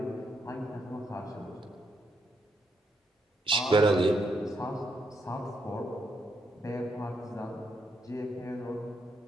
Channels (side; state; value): both; normal; correlation 0.78